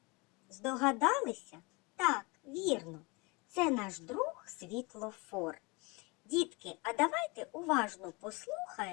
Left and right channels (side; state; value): right; quieter; 27.3 dB